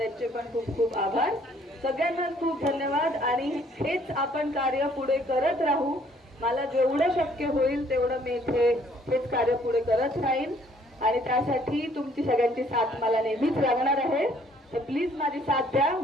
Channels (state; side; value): normal; both; correlation 0.62